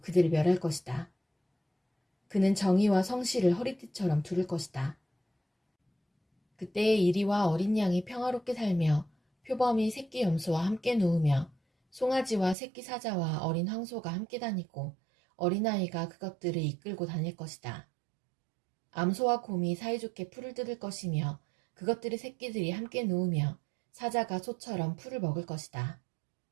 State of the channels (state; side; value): drops out; left; at 12.6 s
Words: 멸할 것이다. 그는 정의와 성실을 허리띠처럼 두를 것이다. 그때의 이리와 어린 양이 평화롭게 살며 표범이 새끼 염소와 함께 누우며 송아지와 새끼 사자와 어린 황소가 함께 다니고 어린아이가 그것들을 이끌고 다닐 것이다. 암소와 곰이 사이좋게 풀을 뜯을 것이며 그것들의 새끼들이 함께 누우며 사자가 소처럼 풀을 먹을 것이다.